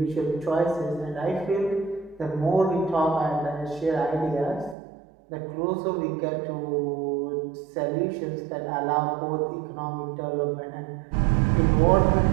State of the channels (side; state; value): left; drops out; at 4.8 s